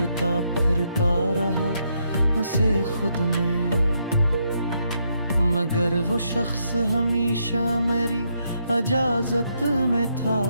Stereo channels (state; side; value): inverted; both; correlation -0.77